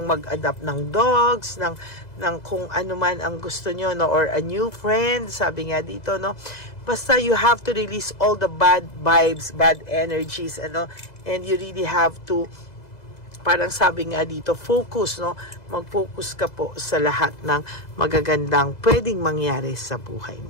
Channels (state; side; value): late; right; 2.0 ms